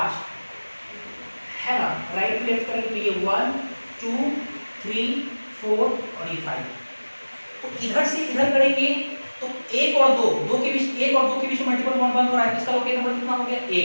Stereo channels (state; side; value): inverted; both; correlation -1.00